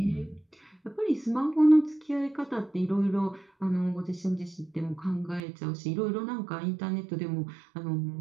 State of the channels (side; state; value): left; drops out; at 5.4 s